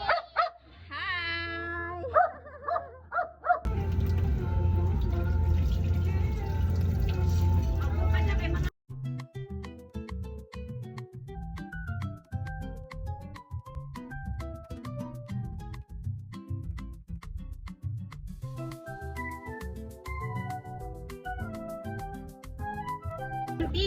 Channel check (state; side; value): identical; both; correlation 1.00